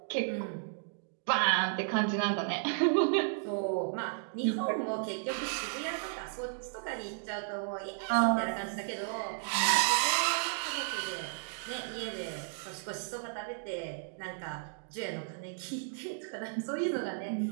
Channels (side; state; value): left; silent; digital silence